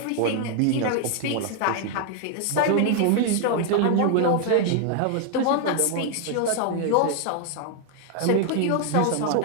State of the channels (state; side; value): different; both; correlation 0.00